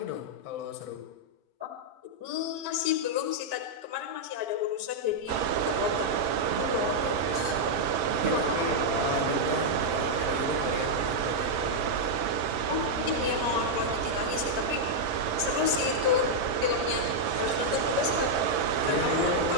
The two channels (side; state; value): left; late; 5.5 ms